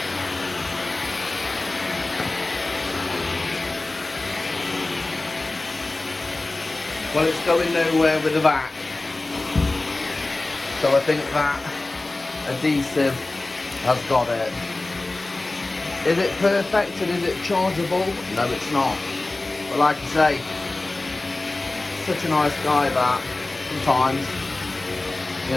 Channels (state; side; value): quieter; right; 3.0 dB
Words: Well, it's going nowhere with the back, so I think that adhesive has got it. Is it perfect and is it chargeable? No, it's not. But like I say, such a nice guy that sometimes,